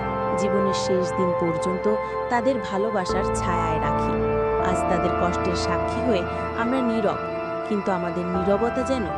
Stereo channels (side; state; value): both; identical; correlation 1.00